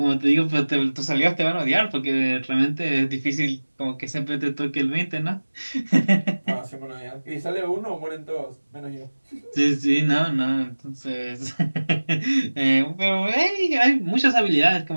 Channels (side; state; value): both; inverted; correlation -1.00